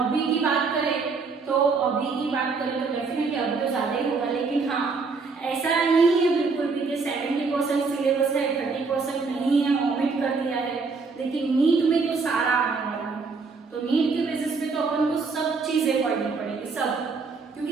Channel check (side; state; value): left; quieter; 4.5 dB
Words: की बात करें तो डेफिनेटली अभी तो ज्यादा ही होगा, लेकिन हाँ ऐसा नहीं है बिल्कुल भी कि 70% सिलेबस है, 30% नहीं है, ओमिट कर दिया है। लेकिन नीट में तो सारा आने वाला है, तो नीट के बेसिस पे तो अपन को सब चीजें पढ़नी पड़ेगी, सब।